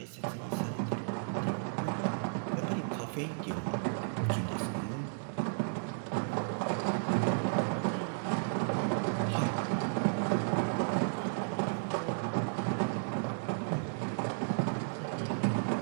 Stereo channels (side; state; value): left; silent; digital silence